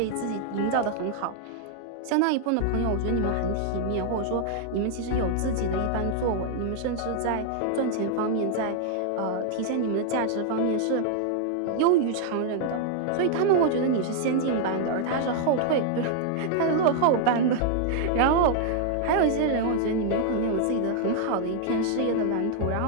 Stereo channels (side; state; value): both; different; correlation 0.00